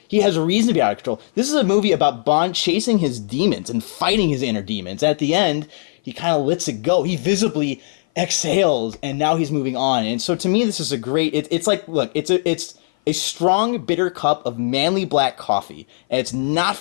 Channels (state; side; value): silent; right; 56 dB below the other